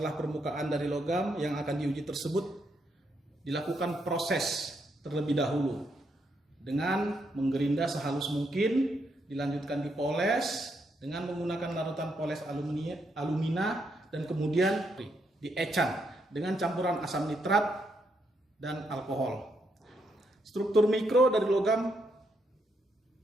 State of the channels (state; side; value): normal; both; correlation 0.78